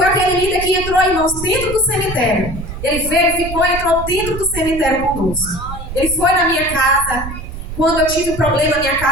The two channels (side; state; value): right; noise; rumble, 9 dB below the sound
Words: aquele líder que entrou, irmãos, dentro do cemitério. Ele veio, ficou, entrou dentro do cemitério conosco. Ele foi na minha casa. Quando eu tive um problema na minha